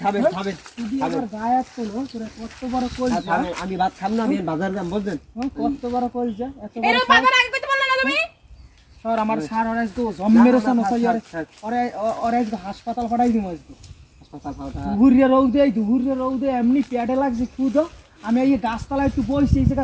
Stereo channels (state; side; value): identical; both; correlation 1.00